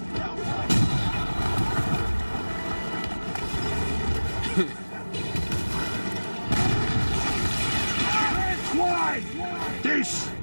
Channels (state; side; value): inverted; both; correlation -1.00